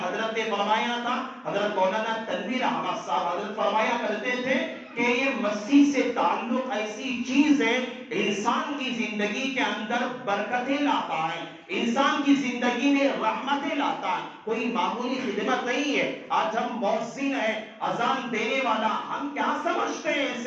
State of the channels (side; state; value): both; identical; correlation 1.00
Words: نے فرمایا تھا، حضرت مولانا تنویر احمد صاحب حضرت فرمایا کرتے تھے کہ یہ مسجد سے تعلق ایسی چیز ہے انسان کی زندگی کے اندر برکتیں لاتا ہے، انسان کی زندگی میں رحمتیں لاتا ہے، کوئی معمولی خدمت نہیں ہے۔ آج ہم مؤذن ہیں، اذان دینے والا، ہم کیا سمجھتے ہیں